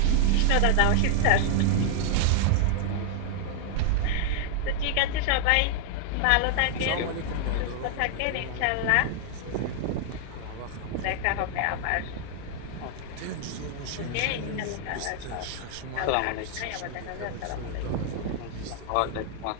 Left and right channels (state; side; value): different; both; correlation 0.00